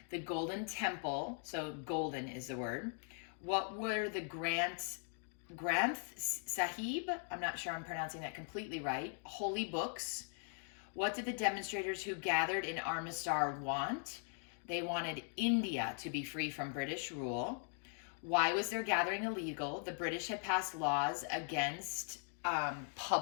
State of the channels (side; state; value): right; silent; 51 dB below the other